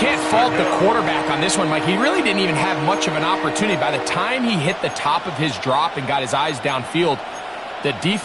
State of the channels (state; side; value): identical; both; correlation 1.00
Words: fault the quarterback on this one, Mike. He really didn't even have much of an opportunity. By the time he hit the top of his drop and got his eyes downfield, the